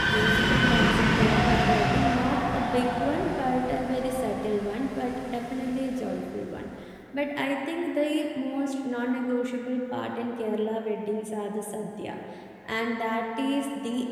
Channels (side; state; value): both; identical; correlation 1.00